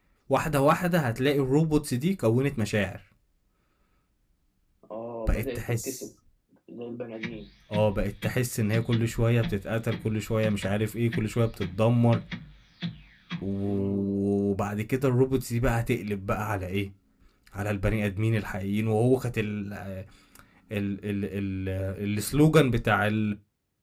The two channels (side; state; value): both; identical; correlation 1.00